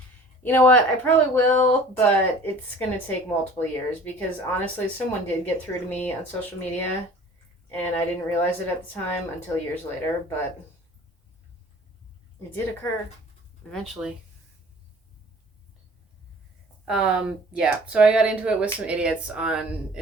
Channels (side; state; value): both; normal; correlation 0.47